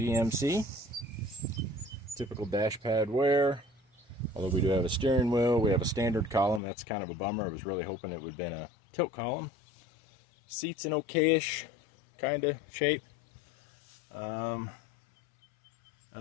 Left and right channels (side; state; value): right; drops out; at 6.6 s